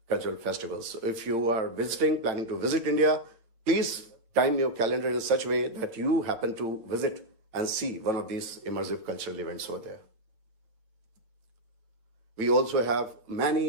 cultural festivals. So if you are planning to visit India, please time your calendar in such a way that you happen to visit and see one of these immersive cultural events over there. We also have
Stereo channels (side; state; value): left; late; 9.0 ms